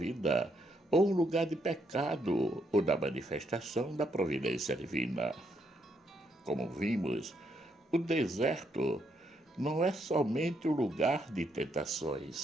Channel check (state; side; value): normal; both; correlation 0.75